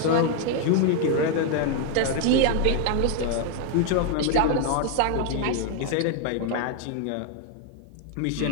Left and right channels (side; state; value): both; different; correlation 0.01